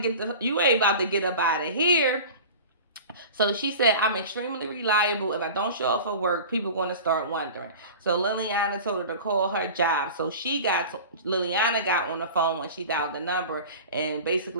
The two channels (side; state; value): both; inverted; correlation -0.36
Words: get up out of here." So she said, "I'm extremely reliable. If I don't show up for work, people going to start wondering." So Liliana told her to call her job. So Liliana got on the phone when she dialed the number and